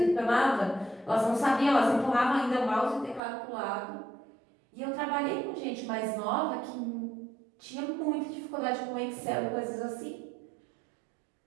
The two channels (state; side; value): drops out; left; at 3.2 s